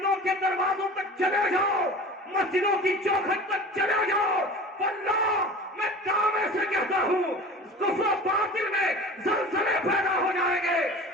کے دروازوں تک چلے جاؤ، مسجدوں کی چوکھٹ تک چلے جاؤ، واللہ میں دعوے سے کہتا ہوں کفر و باطل میں زلزلے پیدا ہو جائیں گے.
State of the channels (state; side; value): normal; both; correlation 0.38